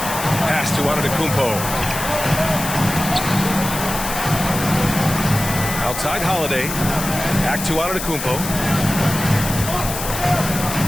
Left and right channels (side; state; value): left; noise; hiss, 6 dB below the sound